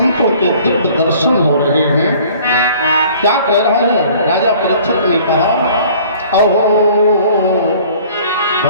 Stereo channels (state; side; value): inverted; both; correlation -0.52